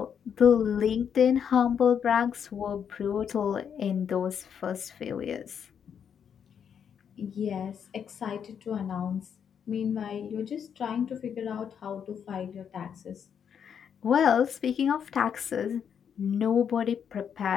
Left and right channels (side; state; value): right; quieter; 7.8 dB